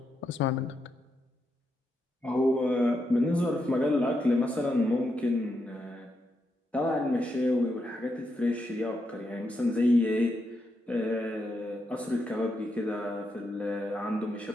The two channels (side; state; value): both; normal; correlation 0.82